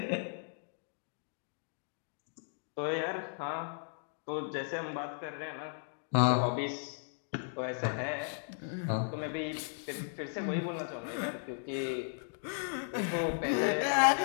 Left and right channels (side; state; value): right; silent; digital silence